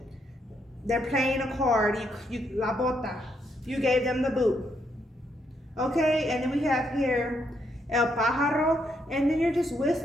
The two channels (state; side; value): normal; both; correlation 0.76